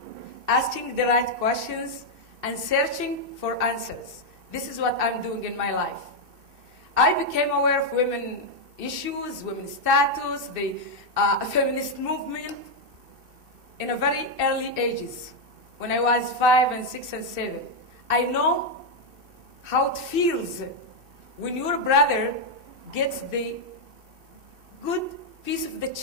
asking the right questions, and searching for answers. This is what I'm doing in my life. I became aware of women issues, women's status, the feminist movement in a very early ages, when I was 5 and 6 and 7. I know how it feels when your brother gets the good piece of the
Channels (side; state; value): left; late; 2.6 ms